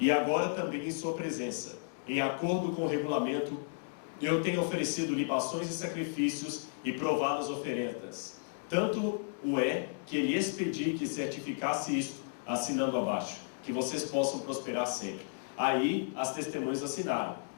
agora também em sua presença, em acordo com o regulamento, eu tenho oferecido libações e sacrifícios e provado as oferendas. Tanto o é que ele expedi que certificasse isto, assinando abaixo, que vocês possam prosperar sempre. Aí as testemunhas assinaram.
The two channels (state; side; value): silent; right; digital silence